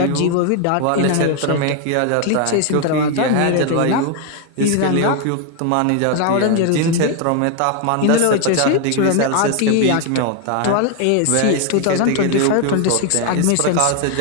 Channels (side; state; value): both; different; correlation 0.01